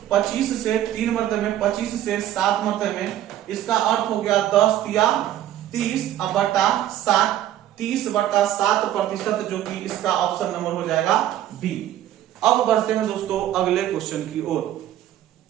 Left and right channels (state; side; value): quieter; left; 12.4 dB